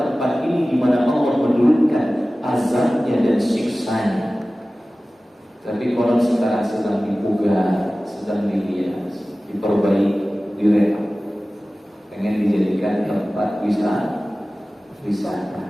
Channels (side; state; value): both; normal; correlation 0.97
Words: ini di mana Allah menurunkan azabnya dan siksanya. Tapi orang sekarang sedang dipugar, sedang dihias, diperbaiki, direhab, pengen dijadikan tempat